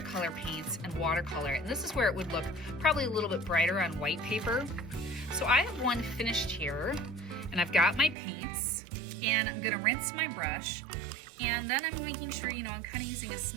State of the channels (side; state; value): left; drops out; at 8.2 s